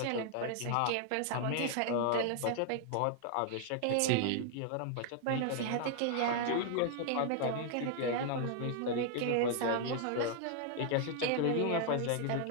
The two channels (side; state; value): both; different; correlation 0.00